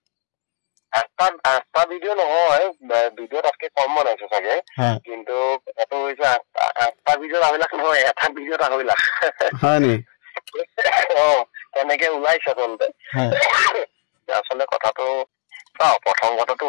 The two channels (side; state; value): right; silent; digital silence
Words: আঠটা ভিডিঅ' নহয়, ভিডিঅ' তাতকে কম বনাইছে চাগে, কিন্তু কথাটো হৈছে 8টা ভিডিঅ'ত 2.5 লাখ নহয়, এটা ভিডিঅ'ত 2.5 লাখ। হয় নি? তেনেকে ওলাইছে আচলতে। আচলতে কথাটো প্ৰথম কথাটো